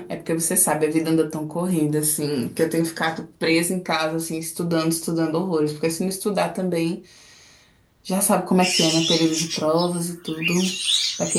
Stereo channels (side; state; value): both; identical; correlation 1.00